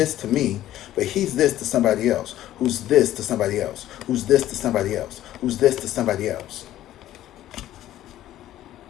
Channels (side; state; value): right; quieter; 13.4 dB